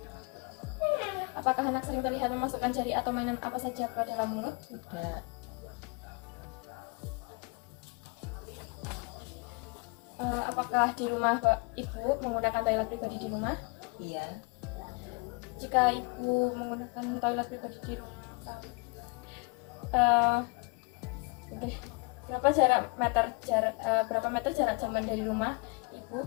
Apakah anak sering terlihat memasukkan jari atau mainan apa saja ke dalam mulut? Tidak. Apakah di rumah Ibu menggunakan toilet pribadi di rumah? Iya. Jika Ibu menggunakan toilet pribadi di rumah, berapa meter jarak jaman dari rumah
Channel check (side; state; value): right; quieter; 31.9 dB